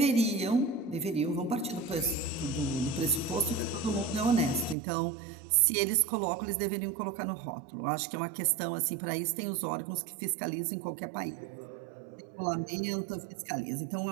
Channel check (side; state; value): left; drops out; at 4.8 s